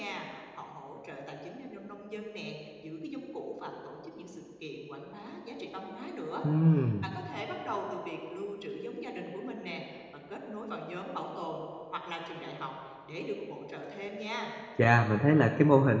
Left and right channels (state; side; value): identical; both; correlation 1.00